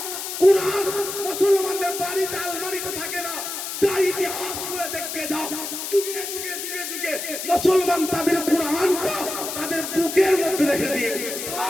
কোরআন মুসলমানদের বাড়িতে আলমারিতে থাকে না যাই ইতিহাস করে দেখতে যাও যুগে মুসলমান তাদের কোরআনটা তাদের বুকের মধ্যে রেখে দিয়ে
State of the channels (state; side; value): noise; left; hiss, 6 dB below the sound